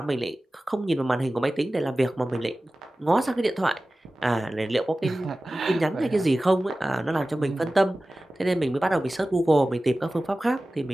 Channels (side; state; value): both; normal; correlation 0.96